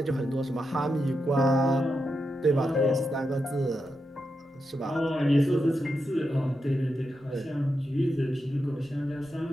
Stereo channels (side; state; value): both; normal; correlation 0.86